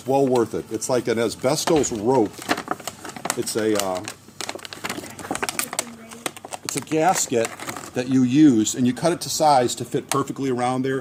well worth it. It's like an asbestos rope. It's a gasket that you use, and you cut it to size to fit perfectly around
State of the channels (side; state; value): both; identical; correlation 1.00